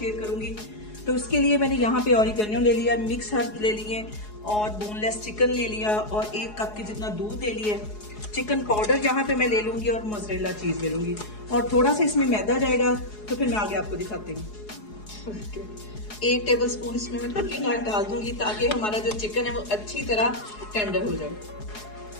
करूंगी। तो इसके लिए मैंने यहाँ पे ऑरिगेनो ले लिया, मिक्स हर्ब ले लिए और बोनलेस चिकन ले लिया और 1 कप के जितना दूध ले लिया। चिकन पाउडर यहाँ पे मैं ले लूंगी और मोज़रेला चीज ले लूंगी और थोड़ा सा इसमें मैदा जाएगा। तो फिर मैं आगे आपको दिखाती हूँ। 1 टेबल स्पून इसमें मैं कुकिंग ऑयल डाल दूंगी ताकि हमारा जो चिकन है वो अच्छी तरह टेंडर हो जाए।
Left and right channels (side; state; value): right; late; 4.8 ms